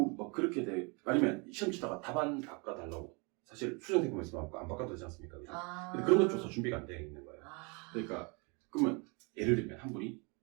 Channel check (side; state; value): left; quieter; 31.3 dB